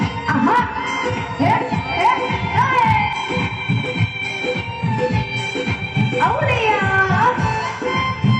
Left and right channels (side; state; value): both; identical; correlation 1.00